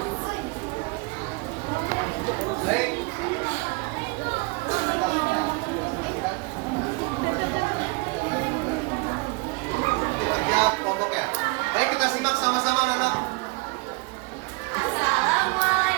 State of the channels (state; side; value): quieter; left; 27.2 dB